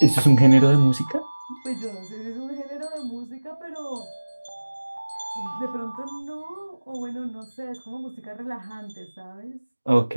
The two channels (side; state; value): both; inverted; correlation -1.00